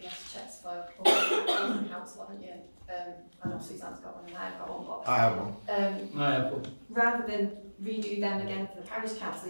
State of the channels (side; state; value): both; inverted; correlation -1.00